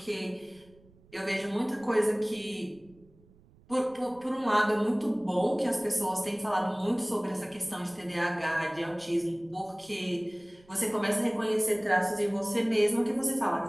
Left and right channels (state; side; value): noise; right; rumble, 28 dB below the sound